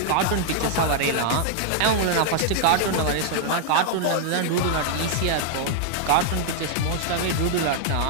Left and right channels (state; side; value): different; both; correlation 0.00